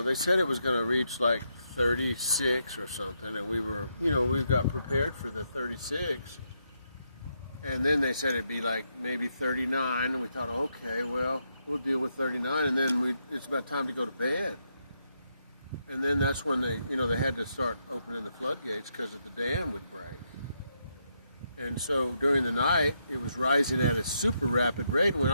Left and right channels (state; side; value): inverted; both; correlation -0.80